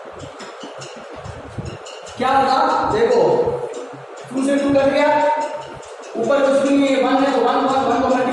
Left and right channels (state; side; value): identical; both; correlation 1.00